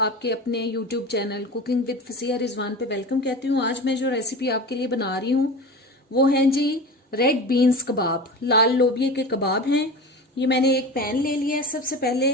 आपके अपने YouTube channel cooking with Fasiha Rizwan पे वेलकम कहती हूँ। आज मैं जो रेसिपी आपके लिए बना रही हूँ वो है जी रेड बीन्स कबाब, लाल लोबिये के कबाब हैं। ये मैंने एक पैन ले लिया है। सबसे पहले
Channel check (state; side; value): normal; both; correlation 0.31